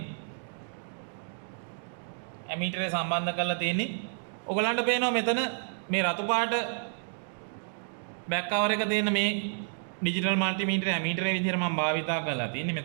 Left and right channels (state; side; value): silent; left; digital silence